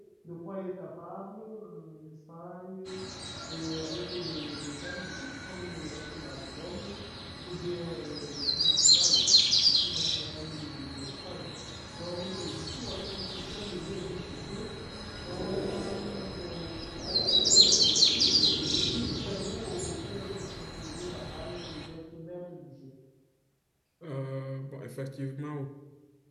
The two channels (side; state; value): both; identical; correlation 1.00